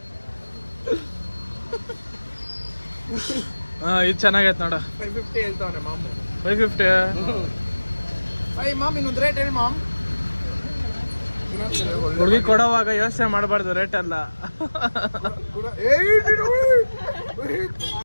ಹಾಂ ಇದು ಚೆನ್ನಾಗೈತೆ ನೋಡ. 550 ಹೇಳ್ತಾವನೆ ಮಾಮು. 550. ಮಾಮ್ ಇನ್ನೊಂದು ರೇಟ್ ಹೇಳಿ ಮಾಮ್. ಹುಡುಗಿ ಕೊಡೋವಾಗ ಯೋಚನೆ ಮಾಡಬಾರ್ದು ರೇಟ್ ಅಲ್ಲ.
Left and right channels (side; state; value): both; inverted; correlation -1.00